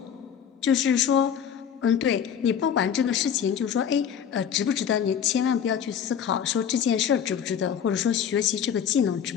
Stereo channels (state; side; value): quieter; right; 8.3 dB